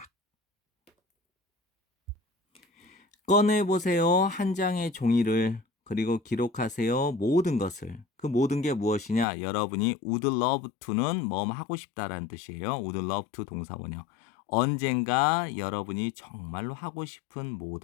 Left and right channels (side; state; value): right; drops out; at 9.2 s